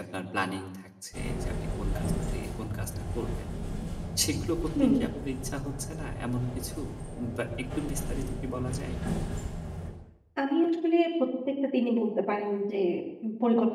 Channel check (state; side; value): identical; both; correlation 1.00